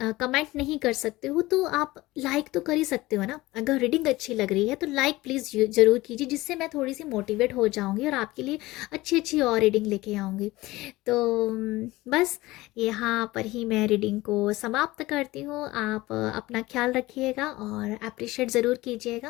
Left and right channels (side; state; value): right; quieter; 19.2 dB